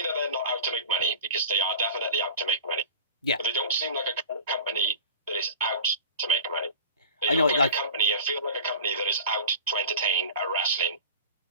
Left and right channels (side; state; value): both; inverted; correlation -0.36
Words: that they're not out to make money, because they are definitely out to make money. Yeah. But they don't seem like a company that is out to make money. They I know, look like a company and feel like a company that is out to entertain a wrestling